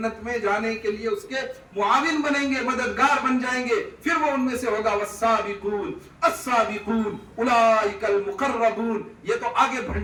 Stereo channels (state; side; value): identical; both; correlation 1.00